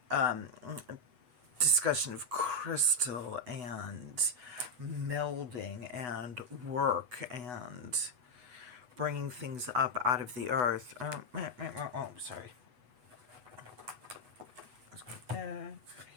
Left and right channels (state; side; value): late; left; 8.1 ms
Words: discussion of crystal and melding and work and bringing things up out of the earth. Sorry. Let's go there,